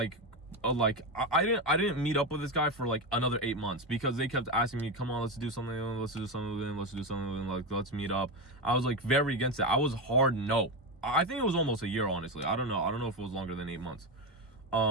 didn't meet up with this guy for like another 8 months because they kept asking me, come on, let's do something with him, like let's meet up. I was like very against it. I was hard no. I think it was almost a year, honestly. I don't know if it was longer than 8 months.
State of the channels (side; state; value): both; normal; correlation 0.14